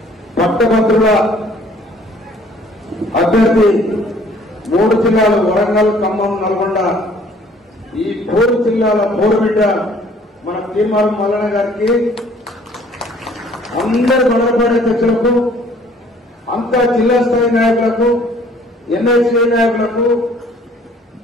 పట్టభద్రుల అభ్యర్థి 3 జిల్లాలు వరంగల్, ఖమ్మం, నల్గొండ, ఈ 4 జిల్లాల పోరుబిడ్డ మన తీర్మానం మల్లన్న గారికి, అందరు మండలపాటి అధ్యక్షులకు, అంతా జిల్లా స్థాయి నాయకులకు, ఎన్ఐసీ నాయకులకు,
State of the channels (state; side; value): normal; both; correlation 0.57